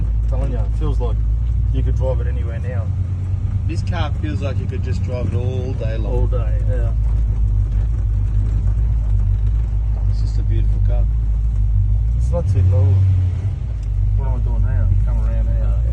I'm telling you, it feels like you could drive it anywhere now. This car feels like you could just drive it all day long. All day. Yeah. It's just a beautiful car. It's not too low. What am I doing now? Come around now.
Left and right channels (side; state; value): both; identical; correlation 1.00